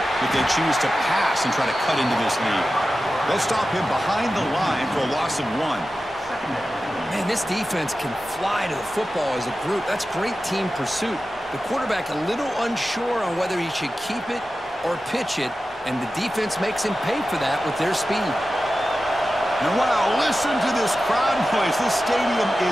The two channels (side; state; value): both; normal; correlation 0.93